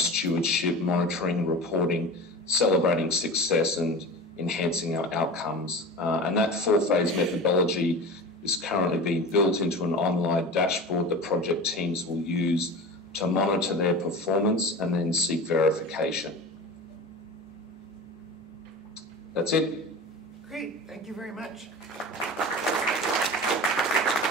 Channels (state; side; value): normal; both; correlation 0.32